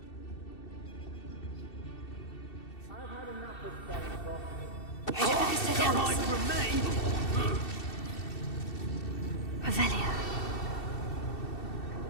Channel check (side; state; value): right; late; 2.7 ms